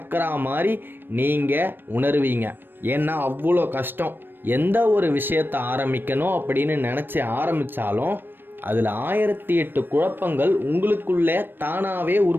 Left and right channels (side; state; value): left; late; 0.096 ms